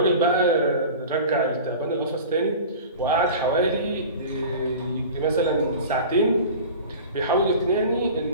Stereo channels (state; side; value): inverted; both; correlation -0.37